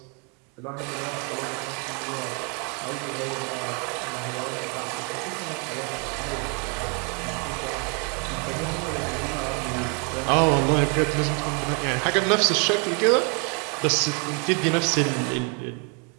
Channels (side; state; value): left; quieter; 36.4 dB